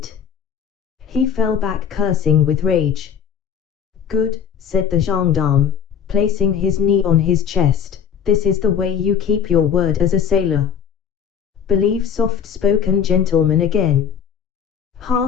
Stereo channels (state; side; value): quieter; right; 7.8 dB